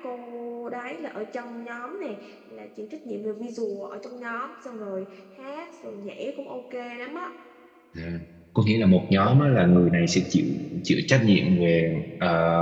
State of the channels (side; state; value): both; identical; correlation 1.00